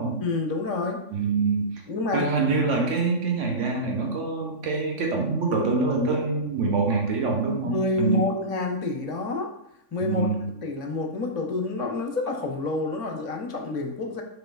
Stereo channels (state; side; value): late; left; 3.5 ms